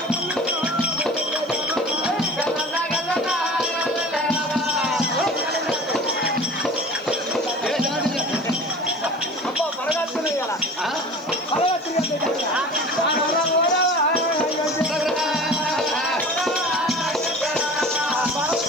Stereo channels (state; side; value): noise; left; hiss, 29 dB below the sound